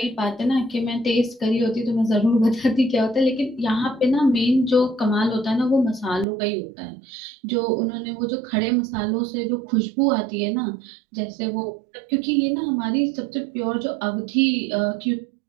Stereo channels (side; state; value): left; drops out; at 6.2 s